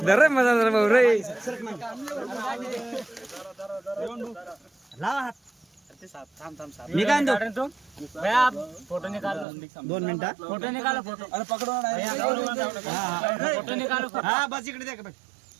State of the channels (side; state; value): left; drops out; at 9.5 s